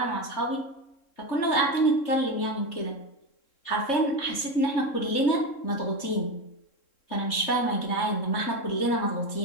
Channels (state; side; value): late; right; 3.7 ms